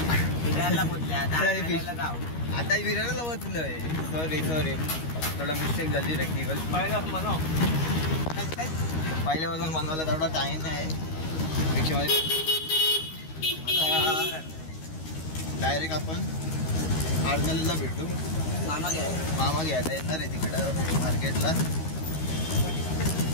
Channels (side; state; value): right; late; 13 ms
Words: आता विरारला बसलोय. सॉरी थोडा मिस्टेक झाली टेक्निकल. पहिल्यापासून बनवायला थोडा टाइम आहे रिक्षामध्ये. आता डायरेक्ट आपण आरणाला भेटू. मामा घ्यायला येणार आहे तिकडं मार्केटला.